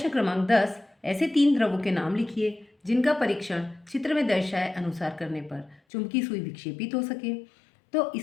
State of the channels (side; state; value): right; drops out; at 5.8 s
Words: क्रमांक 10, ऐसे 3 द्रवों के नाम लिखिए जिनका परीक्षण चित्र में दर्शाए अनुसार करने पर चुंबकीय सुई विक्षेपित हो सके। तो